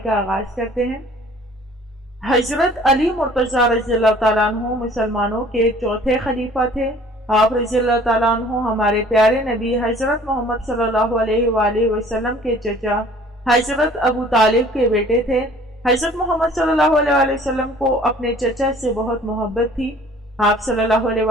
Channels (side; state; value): both; normal; correlation 0.52